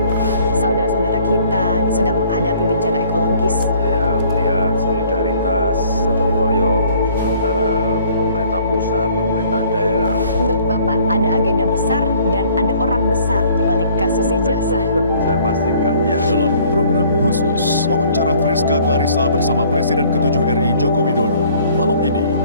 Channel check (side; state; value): both; inverted; correlation -0.58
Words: Saudara-saudara kita sedang menghadapi bencana ekologis. Saya melihat solidaritas, gotong royong antara pemerintah pusat, pemerintah daerah. Menurut Bapak ada agenda besar dan ada orang besar di balik kasus ijazah. Saya pastikan ya. Dalam program khusus, wawancara Friska Clarissa bersama Presiden ke-7 RI Joko Widodo. Malam ini,